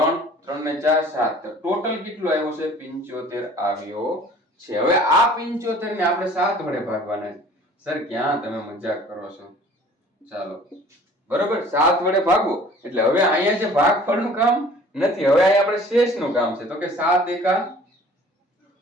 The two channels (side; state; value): both; normal; correlation 0.50